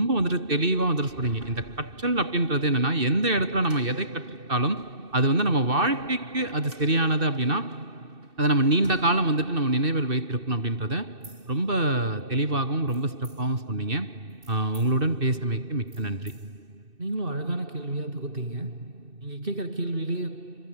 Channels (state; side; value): late; left; 2.6 ms